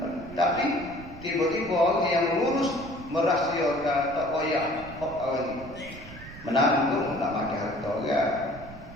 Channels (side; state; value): right; noise; rumble, 16 dB below the sound